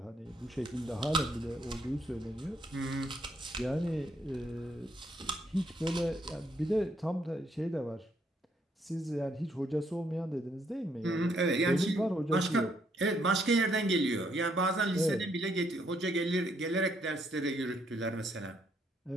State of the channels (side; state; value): both; normal; correlation 0.72